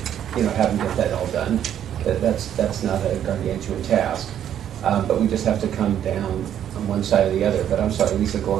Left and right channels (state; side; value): quieter; left; 10.1 dB